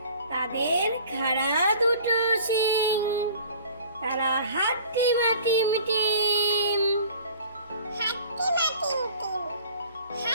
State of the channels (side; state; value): both; inverted; correlation -0.47